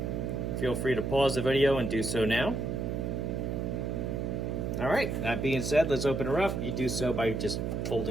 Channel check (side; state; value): right; noise; hum, 2 dB below the sound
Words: feel free to pause the video and do so now. All right, that being said, let's open her up. You do so by just